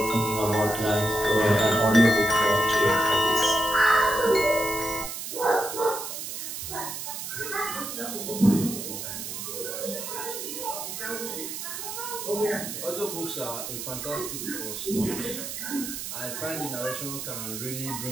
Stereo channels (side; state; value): right; noise; hiss, 6 dB below the sound